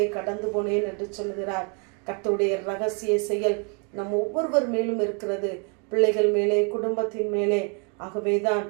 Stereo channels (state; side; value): quieter; left; 34.4 dB